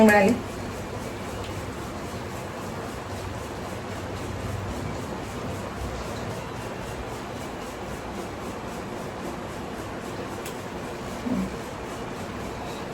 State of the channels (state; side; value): identical; both; correlation 1.00